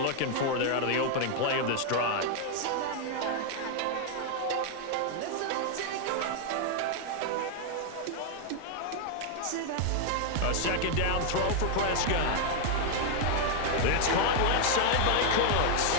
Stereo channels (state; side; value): different; both; correlation 0.00